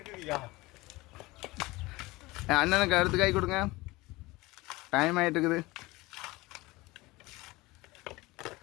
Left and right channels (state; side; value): quieter; right; 21.2 dB